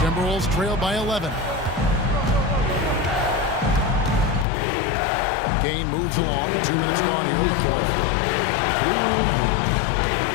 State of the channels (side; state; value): right; drops out; at 4.5 s